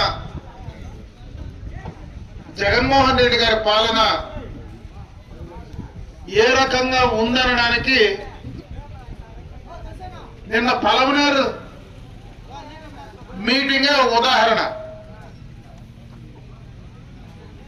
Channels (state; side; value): identical; both; correlation 1.00